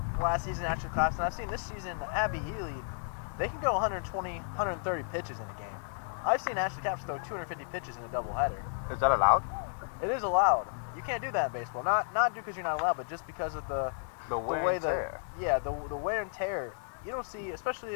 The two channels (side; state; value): right; silent; 56 dB below the other